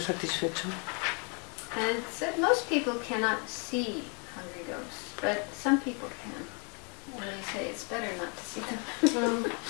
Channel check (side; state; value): right; quieter; 35.9 dB